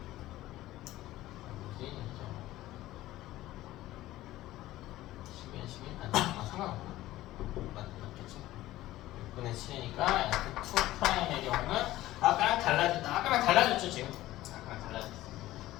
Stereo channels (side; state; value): right; quieter; 15.8 dB